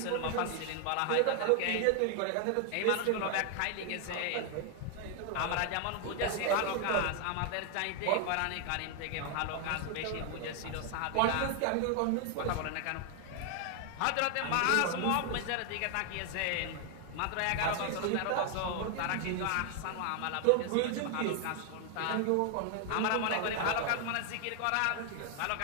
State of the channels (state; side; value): different; both; correlation 0.00